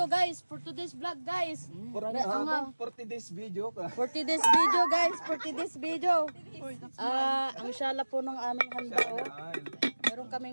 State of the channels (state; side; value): inverted; both; correlation -1.00